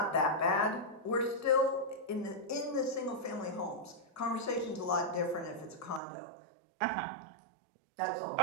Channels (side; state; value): left; drops out; at 6.0 s